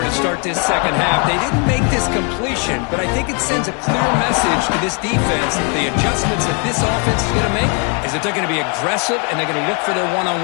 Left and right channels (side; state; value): right; quieter; 36.4 dB